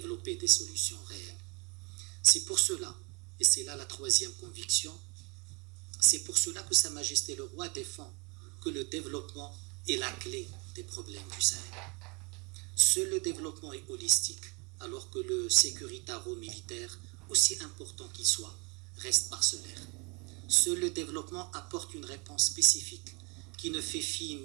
des solutions réelles. C'est pour cela, et c'est là la troisième conviction, c'est pour cela que Sa Majesté le Roi défend que le développement est la clé des problèmes du Sahel. Seul le développement est holistique, alors que le sécuritaro-militaire, aussi important qu'il soit, reste parcellaire. Seul le développement apporte une réponse spécifique qui ne fait fi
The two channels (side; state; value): left; quieter; 28.1 dB